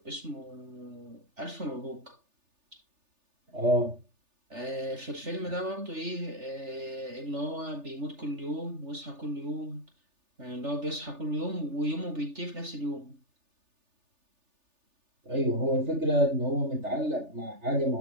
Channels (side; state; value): left; late; 3.4 ms